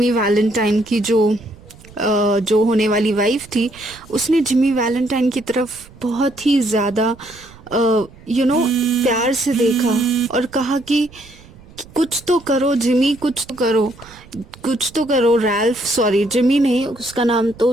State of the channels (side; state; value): right; noise; rumble, 22 dB below the sound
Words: वैलेंटाइन की जो होने वाली वाइफ थी, उसने जिमी वैलेंटाइन की तरफ बहुत ही ज़्यादा प्यार से देखा और कहा कि कुछ तो करो जिमी, कुछ तो करो रैल्फ, सॉरी जिमी नहीं, उसका नाम तो